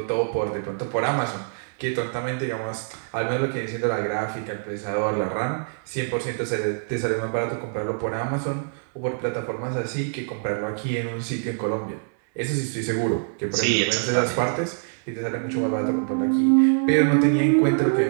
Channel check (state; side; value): silent; left; 62 dB below the other